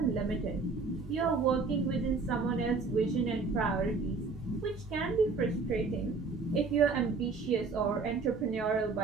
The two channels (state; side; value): quieter; left; 4.3 dB